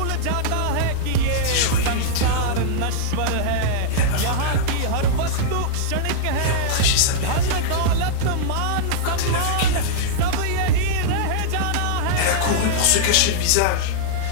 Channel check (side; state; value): both; different; correlation -0.02